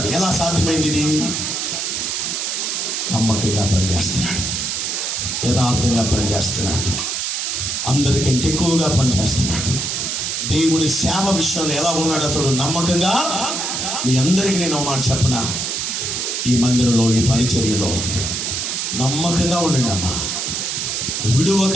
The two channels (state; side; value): noise; right; hiss, 1 dB below the sound